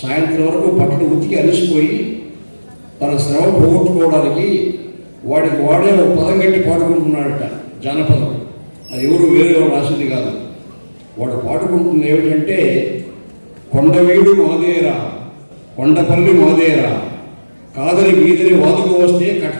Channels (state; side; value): inverted; both; correlation -1.00